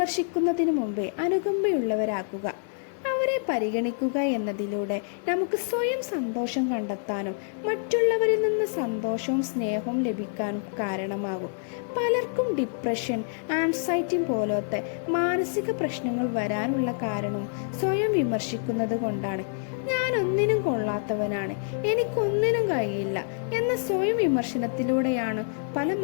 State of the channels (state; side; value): silent; right; 59 dB below the other